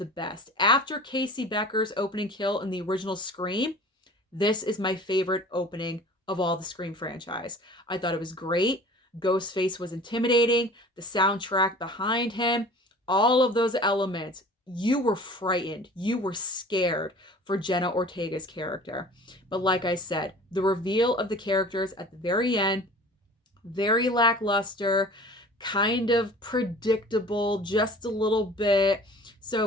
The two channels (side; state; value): both; normal; correlation 0.44